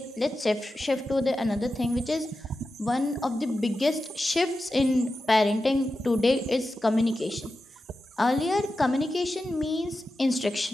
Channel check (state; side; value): normal; both; correlation 0.91